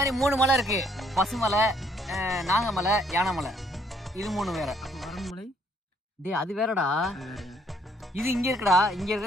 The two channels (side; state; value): both; normal; correlation 0.66